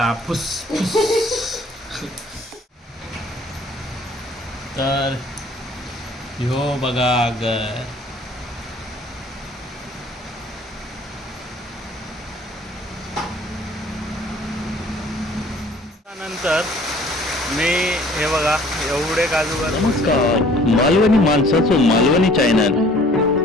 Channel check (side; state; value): both; normal; correlation 0.54